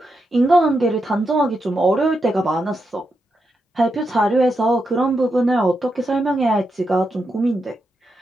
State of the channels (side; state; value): both; normal; correlation 0.85